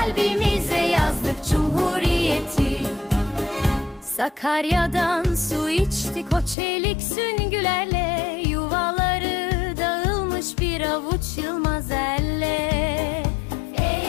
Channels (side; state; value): right; drops out; at 6.6 s